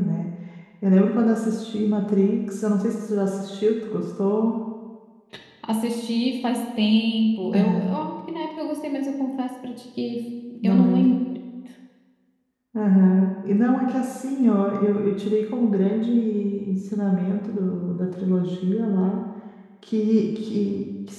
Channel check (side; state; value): both; identical; correlation 1.00